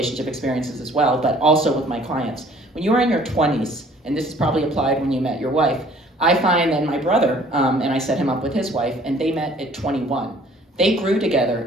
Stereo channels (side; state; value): both; normal; correlation 0.55